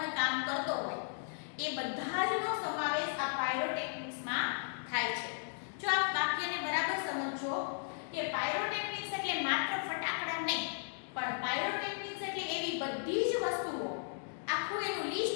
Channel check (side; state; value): right; silent; digital silence